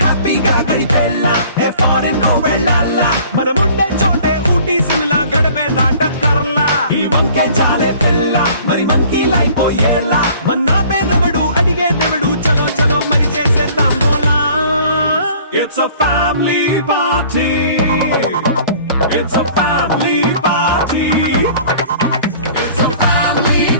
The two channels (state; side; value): inverted; both; correlation -0.51